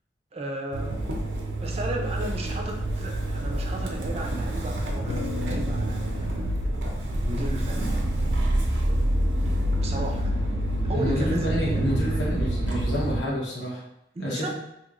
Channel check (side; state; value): both; normal; correlation 0.84